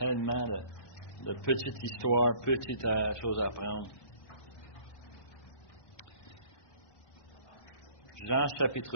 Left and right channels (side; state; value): right; late; 1.2 ms